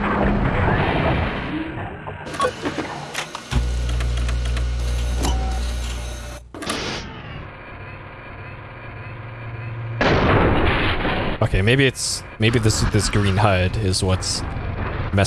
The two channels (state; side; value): identical; both; correlation 1.00